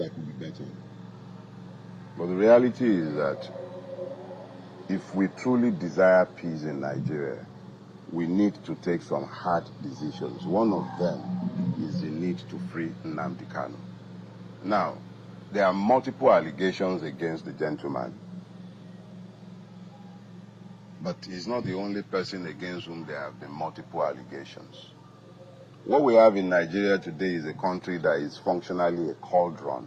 could be better. But the reality is that if we truly desire peace in Nigeria, we need to take some hard decisions. One of them is the need to free Nnamdi Kanu. Now, there are multiple allegations against the gentleman. But he's not the only person against whom there have been multiple allegations. What we have in Nigeria today is a country that is functionally a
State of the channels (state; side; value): identical; both; correlation 1.00